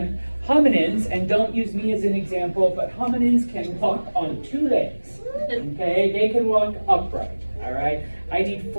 hominins, and don't use me as an example, but hominins can walk on 2 legs. Okay, they can walk upright. All right, I need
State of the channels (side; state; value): both; inverted; correlation -1.00